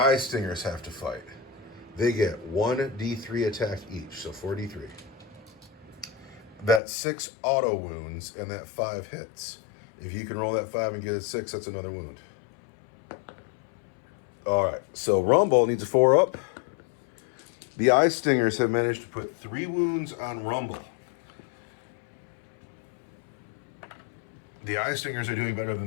Stingers have to fight. They get 1 D3 attack each, so 4 D3. That's 6 auto wounds, and that 5 hits. If you can roll that 5 and get a 6, that's another wound. All right, so Rumble needs a 4 up. The Eye Stingers have managed to put 3 wounds on Rumble. The Eye Stingers are doing better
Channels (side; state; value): right; drops out; at 6.8 s